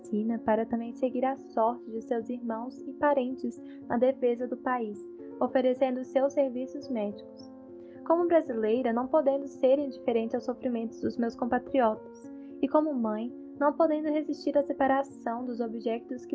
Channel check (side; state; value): both; identical; correlation 1.00